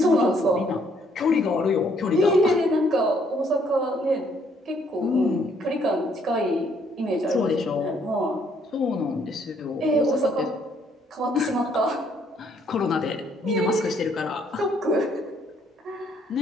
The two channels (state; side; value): normal; both; correlation 0.67